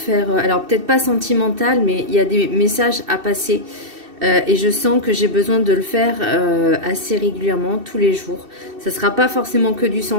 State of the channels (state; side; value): late; left; 2.7 ms